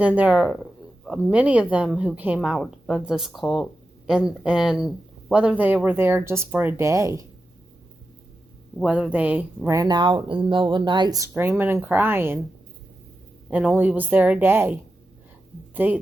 there are many of them who came out of this cult, and whether they were there just for a day, whether they ran out in the middle of the night screaming and crying and only was there a day,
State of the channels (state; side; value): normal; both; correlation 0.90